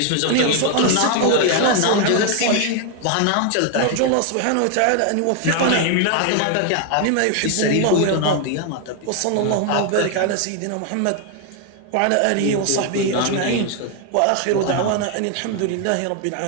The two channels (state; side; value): different; both; correlation 0.00